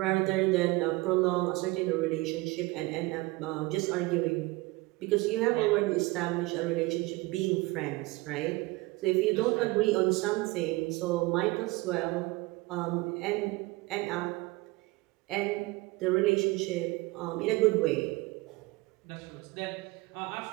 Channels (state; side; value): quieter; left; 22.0 dB